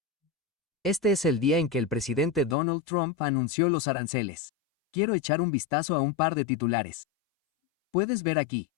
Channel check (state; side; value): drops out; right; at 2.6 s